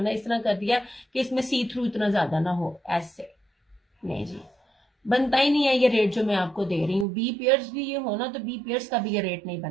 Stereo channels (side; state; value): left; drops out; at 7.1 s